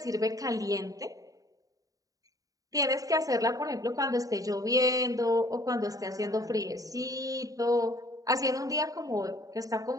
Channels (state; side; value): late; left; 0.17 ms